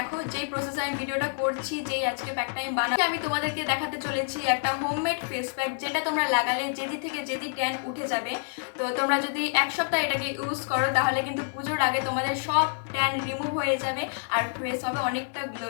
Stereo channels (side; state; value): right; silent; digital silence